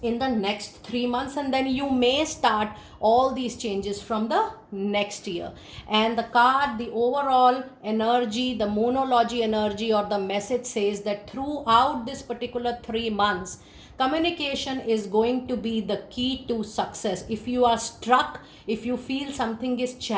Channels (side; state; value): both; identical; correlation 1.00